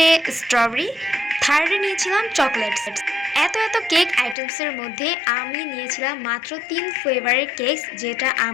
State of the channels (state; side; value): drops out; right; at 4.4 s